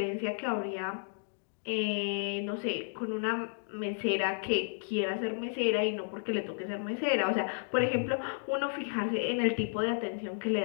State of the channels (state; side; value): silent; right; digital silence